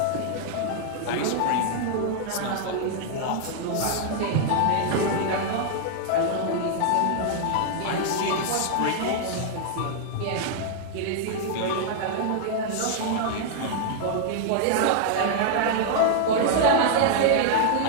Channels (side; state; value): both; different; correlation 0.00